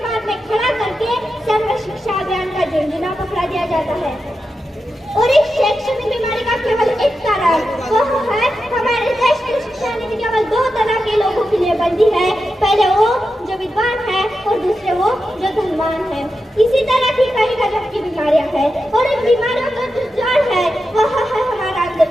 में खड़ा करके सर्व शिक्षा अभियान का झुंझुना पकड़ा दिया जाता है। और इस शैक्षणिक बीमारी का केवल एक कारण वह है हमारे देश की शिक्षा नीति केवल दो तरह के लोगों के लिए बनती है, पहले वो जो विद्वान है और दूसरे वो जो धनवान है। इसी तरह की कई गजब की बीमारियां हैं, और इन बीमारियों का जो जड़ है वह है हमारा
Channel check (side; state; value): both; normal; correlation 0.89